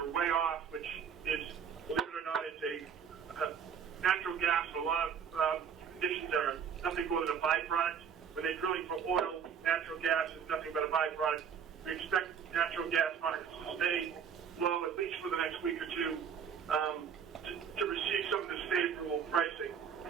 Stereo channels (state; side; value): quieter; left; 7.3 dB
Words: way off, which is, believe it or not, it's a natural gas. A lot of conditions are nothing more than a byproduct. When they're drilling for oil, natural gas is nothing but a byproduct. We expect natural gas markets to stay low at least for the next week or two to receive some of this favorable pricing.